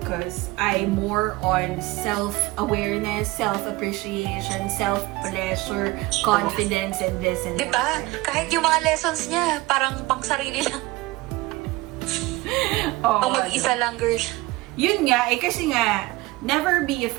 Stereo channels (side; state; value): left; quieter; 20.4 dB